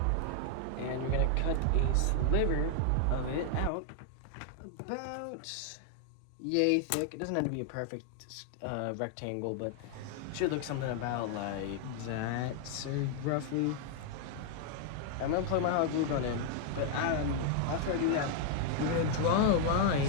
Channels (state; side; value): different; both; correlation 0.00